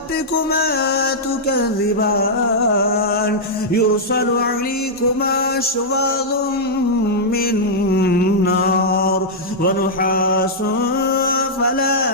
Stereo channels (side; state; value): both; normal; correlation -0.08